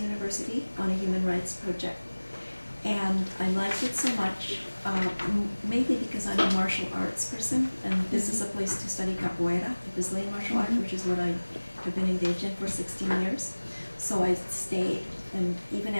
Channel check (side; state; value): both; inverted; correlation -1.00